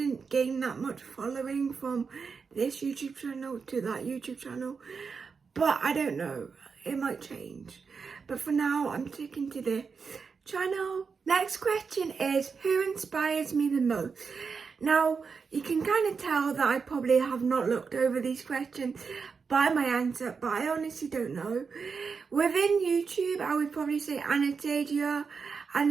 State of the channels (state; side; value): quieter; left; 5.4 dB